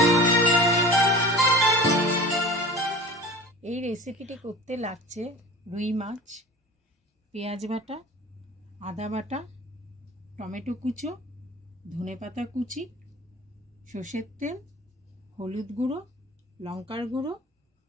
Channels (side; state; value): both; normal; correlation 0.38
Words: এই রেসিপিটি করতে লাগছে রুই মাছ, পেঁয়াজ বাটা, আদা বাটা, টমেটো কুচো, ধনেপাতা কুচি, সর্ষের তেল, হলুদ গুঁড়ো, লঙ্কার গুঁড়ো,